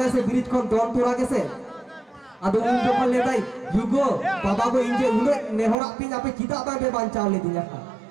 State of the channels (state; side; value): drops out; left; at 5.8 s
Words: से ब्रिज कोन दोन तुरा गेसे आदो उन जखन ले दाई युगो बाबा गो इंजे उने नेहरा पिन आपे चिदा बांगे बांचाव ले दिया